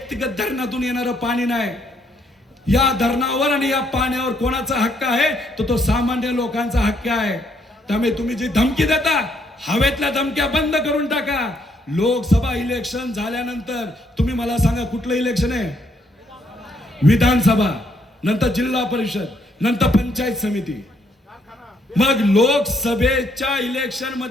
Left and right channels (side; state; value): both; normal; correlation 0.71